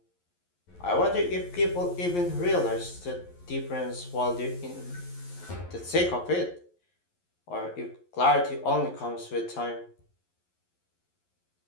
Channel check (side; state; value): right; late; 11 ms